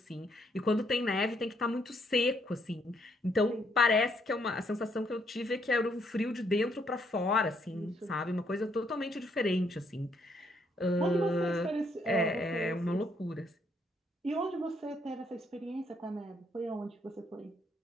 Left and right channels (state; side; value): normal; both; correlation 0.71